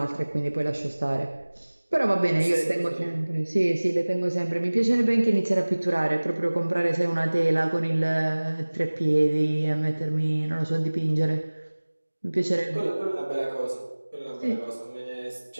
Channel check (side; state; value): both; inverted; correlation -1.00